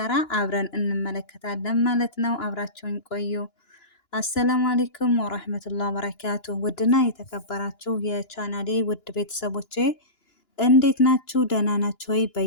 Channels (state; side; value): late; right; 2.9 ms